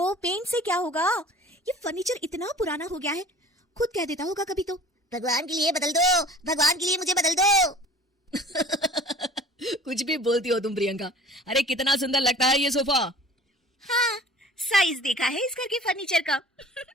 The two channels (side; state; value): both; normal; correlation 0.45